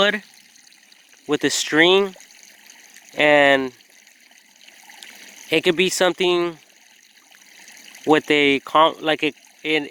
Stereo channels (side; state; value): both; identical; correlation 1.00